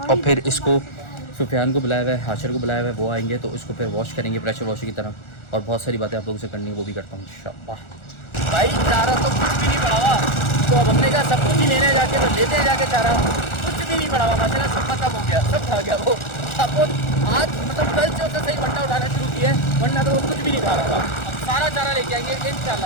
और फिर इसको सुफियान को बुलाया हुआ है, हाशिर को बुलाया हुआ है, वो आएंगे तो इसको फिर वॉश करेंगे प्रेशर वॉशर की तरह, और बहुत सारी बातें आप लोगों से करनी है, वो भी करता हूँ इंशाअल्लाह। भाई चारा तो कुछ भी नहीं पड़ा हुआ, तो अब हमने कहा सब कुछ ही लेने जाके, तो लेते हैं जाके चारा, कुछ भी नहीं पड़ा हुआ माशाल्लाह, सब खत्म हो गया, सब खा गया वो। अब वो आज मतलब कल से उसने सही वंडा उठाना शुरू किया है, वरना तो वो कुछ भी नहीं खा रहा था। अब सारा चारा लेके आएंगे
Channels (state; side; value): late; right; 1.4 ms